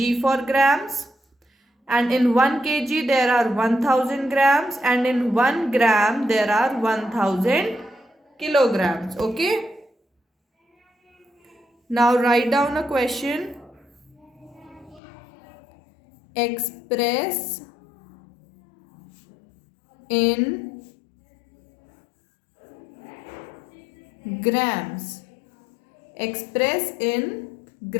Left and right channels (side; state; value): right; drops out; at 15.0 s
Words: for grams. And in 1 kg there are 1000 grams and in 1 gram there are 1000 kilograms. Okay. Now write down a question. Express in grams. Express in